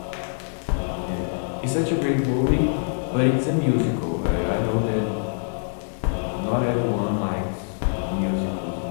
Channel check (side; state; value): right; silent; digital silence